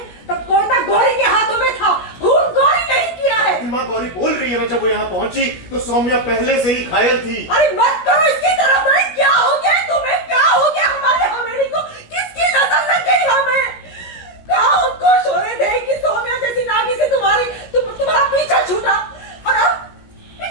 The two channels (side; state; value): right; late; 16 ms